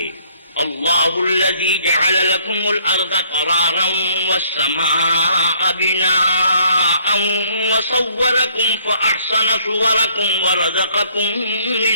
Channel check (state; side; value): inverted; both; correlation -0.61